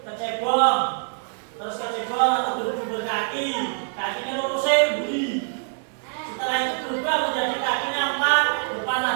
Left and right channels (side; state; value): left; silent; 62 dB below the other